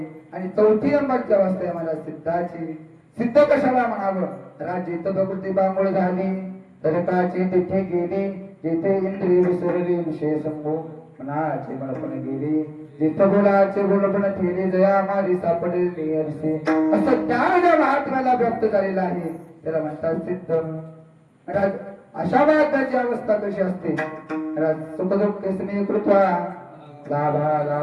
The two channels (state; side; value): identical; both; correlation 1.00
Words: आणि चौथी नंबरची अवस्था आहे महाराज सिद्धाची. सिद्ध कशाला म्हणावं. राज्य प्रकृती बांगोळ झाली तरकाची तिथे गेली, जिथे इंद्रिय विसरली विषय संभो मनाचे मळपण गेली, जिथं बोलाचे बोलपण ठेले जया मारी सापडली अरसे. असं ज्ञान ज्या महात्म्याला प्राप्त झालेलं आहे त्याला म्हणतात सिद्ध. महाराज अशा महात्म्याची अवस्था कशी असते. महाराज सुखदुःख स्नेह कृत्वा लाभा